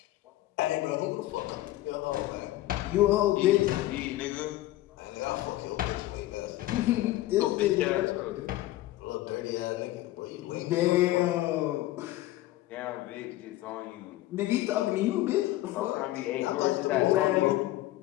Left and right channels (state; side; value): quieter; right; 16.1 dB